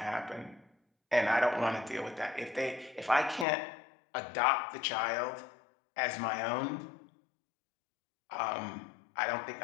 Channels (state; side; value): drops out; right; at 3.5 s